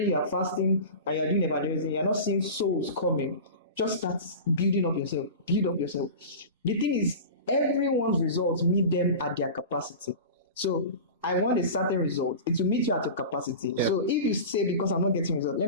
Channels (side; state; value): both; inverted; correlation -0.31